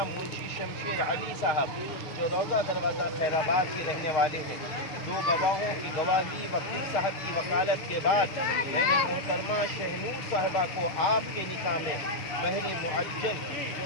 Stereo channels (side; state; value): right; late; 6.5 ms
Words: منشی شمشیر علی صاحب، جو روضہ دروازہ خیر آباد کے رہنے والے ہیں۔ 2 گواہوں کی گواہی، وکیل صاحب کی وکالت کے بعد میں نے محترمہ شہنور صاحبہ کو آپ کے نکاح میں مہر معجل،